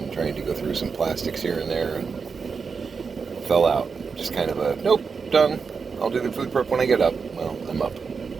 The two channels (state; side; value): quieter; left; 5.4 dB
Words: trying to go through some plastics here and there and fell out. Just kind of a, nope, done. I'll do the food prep when I get up. Well, I'm up.